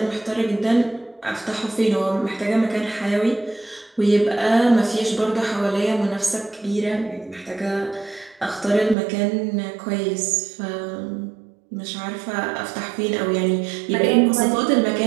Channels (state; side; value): drops out; left; at 9.0 s